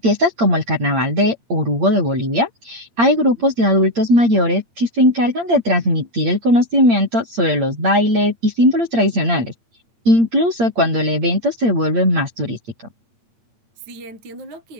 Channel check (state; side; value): late; left; 8.7 ms